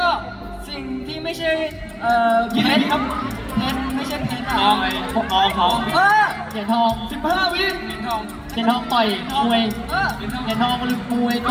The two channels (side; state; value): both; identical; correlation 1.00